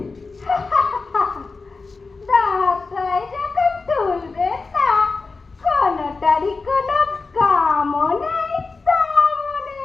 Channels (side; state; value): right; quieter; 4.1 dB